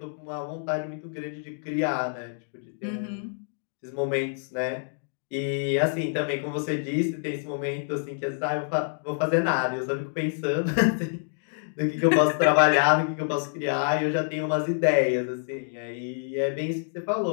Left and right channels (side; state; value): right; silent; digital silence